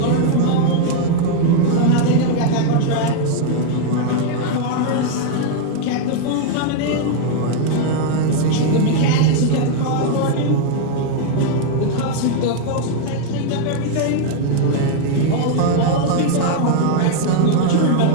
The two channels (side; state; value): both; different; correlation 0.00